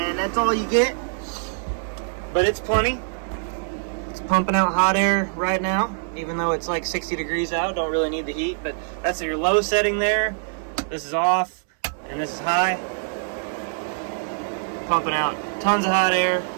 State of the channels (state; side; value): silent; left; 63 dB below the other